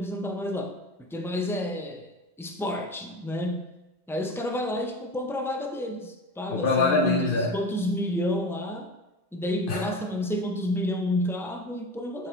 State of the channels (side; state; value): both; normal; correlation 0.29